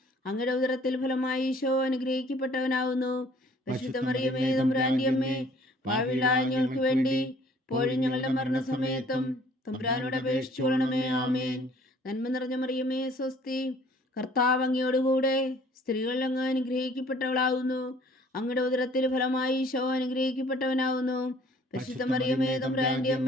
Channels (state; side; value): normal; both; correlation 0.56